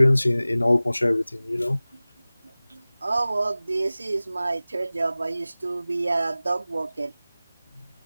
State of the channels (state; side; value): inverted; both; correlation -0.98